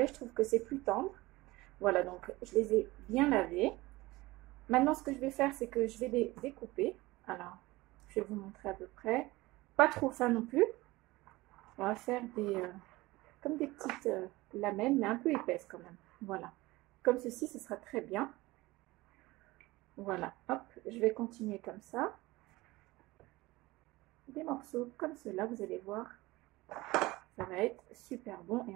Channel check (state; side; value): quieter; left; 20.2 dB